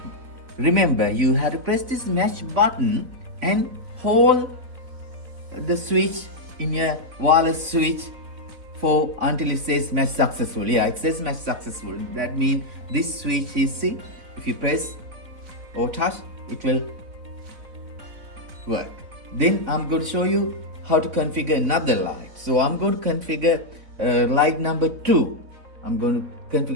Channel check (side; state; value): left; late; 4.0 ms